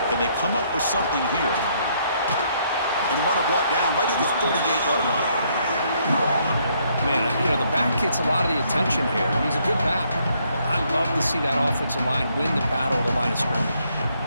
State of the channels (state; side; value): inverted; both; correlation -0.70